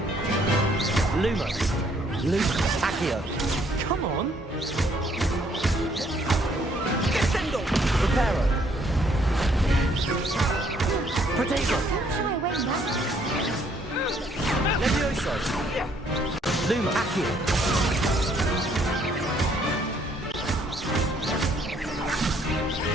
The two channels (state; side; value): normal; both; correlation 0.66